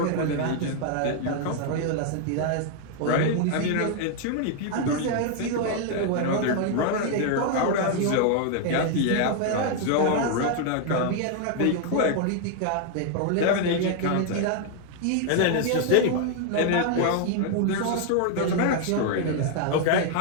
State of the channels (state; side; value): different; both; correlation 0.00